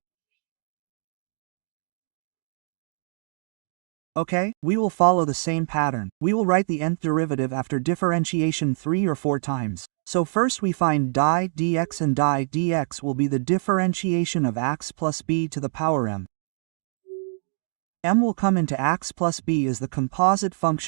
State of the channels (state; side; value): silent; left; digital silence